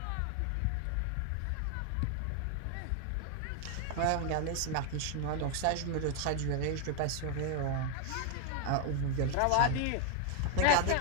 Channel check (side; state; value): both; different; correlation 0.00